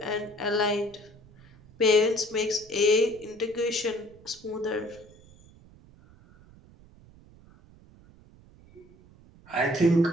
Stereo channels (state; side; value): noise; right; rumble, 25 dB below the sound